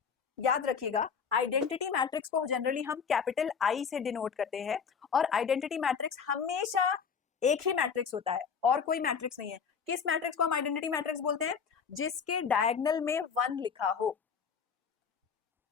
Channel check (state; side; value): quieter; right; 6.4 dB